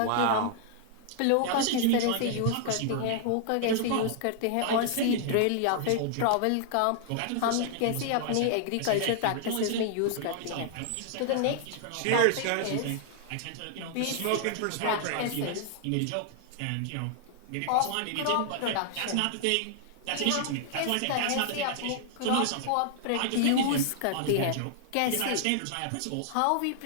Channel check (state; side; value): different; both; correlation -0.01